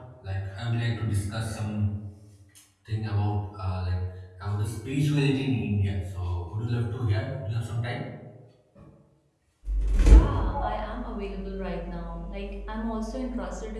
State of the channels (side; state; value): both; identical; correlation 1.00